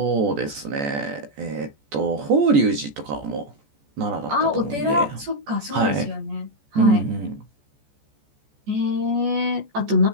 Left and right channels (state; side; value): late; left; 14 ms